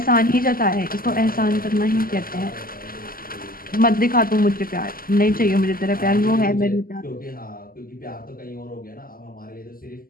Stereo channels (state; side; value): late; right; 0.42 ms